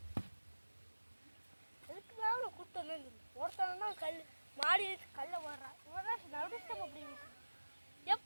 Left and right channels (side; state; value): both; inverted; correlation -1.00